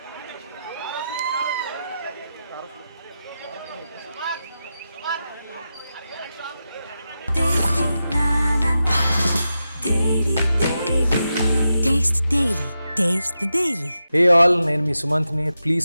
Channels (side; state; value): both; inverted; correlation -0.90